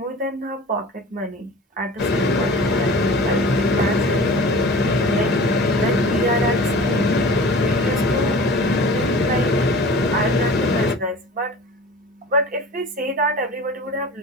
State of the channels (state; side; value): normal; both; correlation 0.40